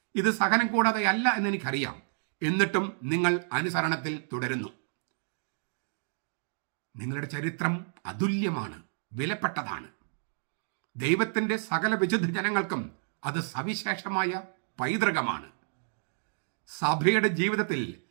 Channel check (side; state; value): left; silent; digital silence